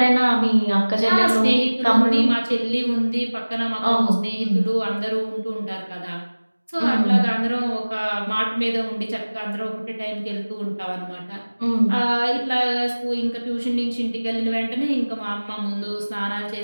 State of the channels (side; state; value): both; inverted; correlation -1.00